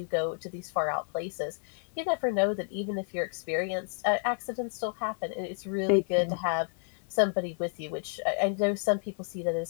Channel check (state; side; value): silent; right; 57 dB below the other